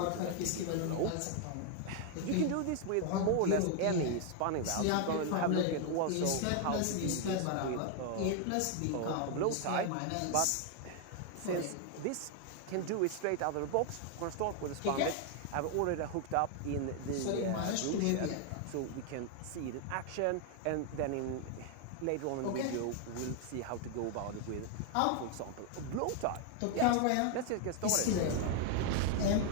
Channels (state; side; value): different; both; correlation 0.00